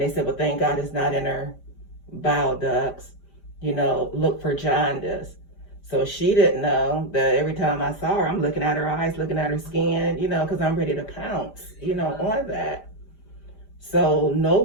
they said, well, thank God it's not in her bile ducts, look for jaundice. So she didn't know that every time I saw her, I'm looking at her eyes, looking at her skin, because I'm ready to pounce, on that. So no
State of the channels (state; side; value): late; right; 5.1 ms